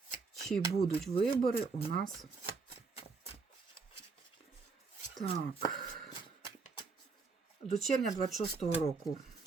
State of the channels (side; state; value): left; quieter; 4.6 dB